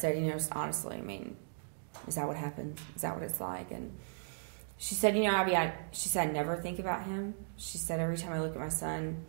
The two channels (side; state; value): left; silent; digital silence